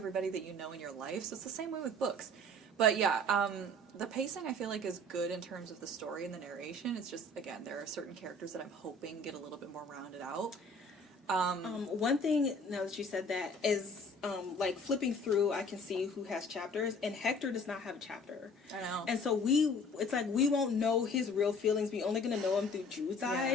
that you know in your life, so it's the same way with books. But yeah, the pacing I feel like is good in terms of the story and the narration. It's just, again, there are certain characters that I'm hoping get a little bit more rounded out. One thing, now that you said that, is like flipping through, I can see who has chapters, and Hector does not have a chapter. I know. And so it's like we won't know his real feelings. We're only going to know him through Jude's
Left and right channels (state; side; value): normal; both; correlation 0.50